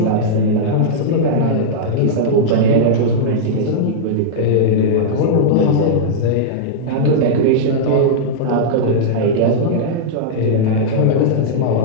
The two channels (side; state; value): both; different; correlation -0.03